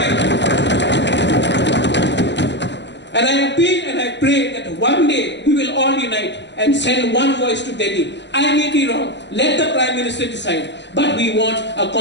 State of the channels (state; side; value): late; right; 0.52 ms